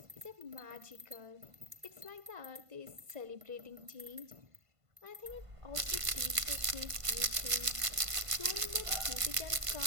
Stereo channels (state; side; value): late; left; 1.5 ms